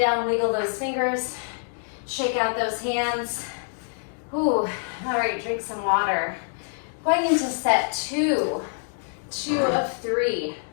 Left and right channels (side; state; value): right; silent; digital silence